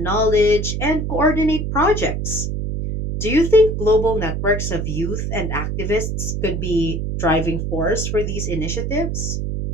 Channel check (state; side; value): noise; right; hum, 2 dB below the sound